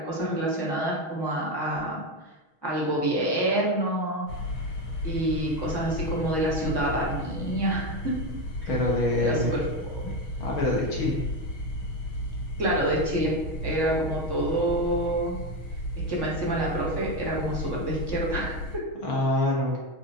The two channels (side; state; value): right; late; 6.3 ms